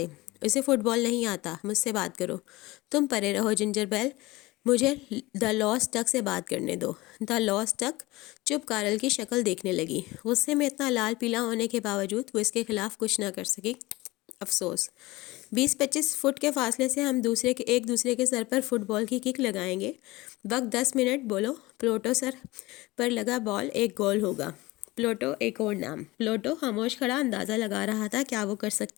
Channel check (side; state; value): right; quieter; 20.6 dB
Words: اسے فٹ بال نہیں آتا، مجھ سے بات کرو۔ تم پرے رہو جنجر بیل۔ مجھے دا لاسٹ ڈک سے بات کرنے دو۔ دا لاسٹ ڈک چپ کارل کی شکل دیکھنے لگی۔ غصے میں اتنا لال پیلا ہونے کے باوجود وہ اس کے خلاف کچھ نہ کر سکی۔ افسوس، 20-25 فٹ کے فاصلے سے ہم ایک دوسرے کے سر پر فٹ بال کی کک لگائیں گے۔ وقت 10 منٹ۔ بولو۔ پلوٹو سر پر لگا بال ایک گول ہوگا۔ پلوٹو ایک اور نام۔ پلوٹو خاموش کھڑا اندازہ لگا رہا تھا کیا وہ کر